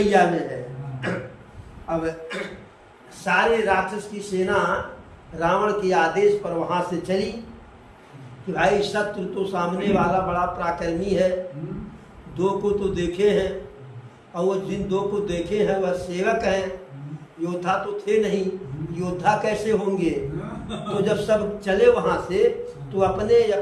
में है। अब सारे राक्षस की सेना रावण के आदेश पर वहां से चली कि भाई शत्रु तो सामने वाला बड़ा पराक्रमी है, दो को तो देखे हैं, और वो जिन दो को देखे हैं वह सेवक हैं, योद्धा तो थे नहीं, योद्धा कैसे होंगे। तो जब सब चले वहां से तो अपने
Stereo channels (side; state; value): both; identical; correlation 1.00